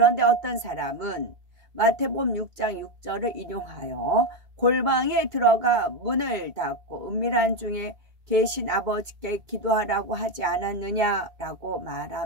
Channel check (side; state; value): left; late; 2.1 ms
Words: 어떤 사람은 마태복음 6장 6절을 인용하여 골방에 들어가 문을 닫고 은밀한 중에 계신 아버지께 기도하라고 하지 않았느냐라고